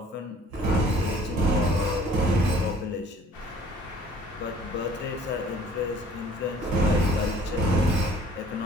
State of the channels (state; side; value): normal; both; correlation 0.54